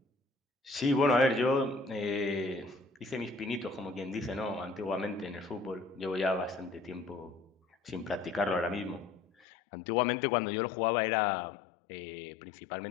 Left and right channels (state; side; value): drops out; right; at 9.3 s